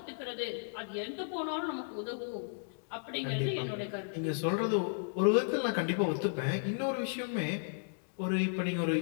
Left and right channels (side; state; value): right; silent; digital silence